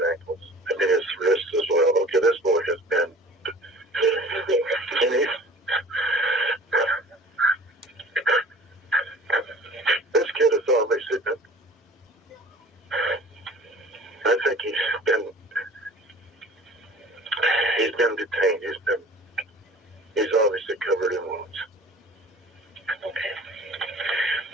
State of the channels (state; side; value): normal; both; correlation 0.45